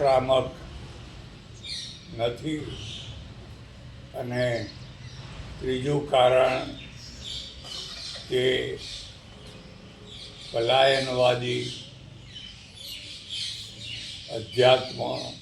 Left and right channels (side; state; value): both; identical; correlation 1.00